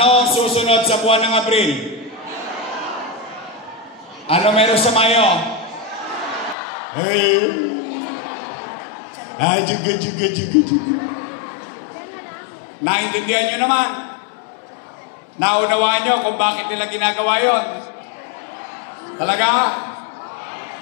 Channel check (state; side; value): drops out; right; at 6.6 s